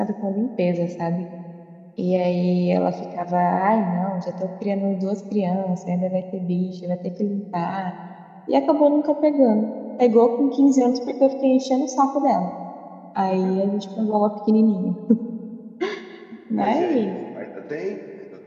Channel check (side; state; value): both; identical; correlation 1.00